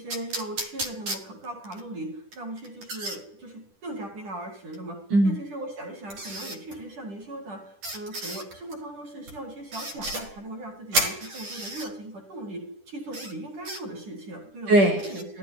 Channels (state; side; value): late; left; 10 ms